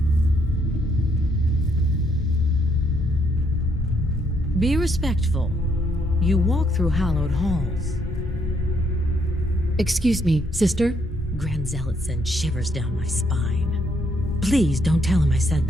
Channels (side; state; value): both; normal; correlation 0.72